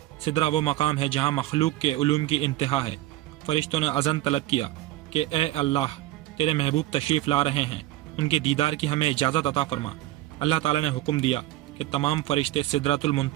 سدرہ وہ مقام ہے جہاں مخلوق کے علوم کی انتہا ہے۔ فرشتوں نے اذن طلب کیا کہ اے اللہ، تیرے محبوب تشریف لا رہے ہیں، ان کے دیدار کی ہمیں اجازت عطا فرما۔ اللہ تعالیٰ نے حکم دیا کہ تمام فرشتے سدرۃ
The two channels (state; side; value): quieter; left; 15.7 dB